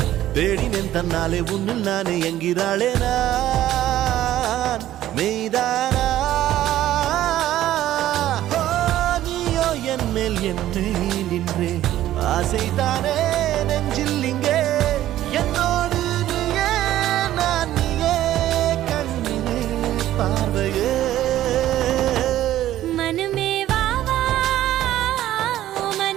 தேடினேன் தன்னாலே உன்னில் நானே என்கிறாளே நான் மெய்தானா என் மேல் என்னை நின்றே ஆசைதானே நெஞ்சில் இங்கே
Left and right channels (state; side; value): quieter; left; 13.4 dB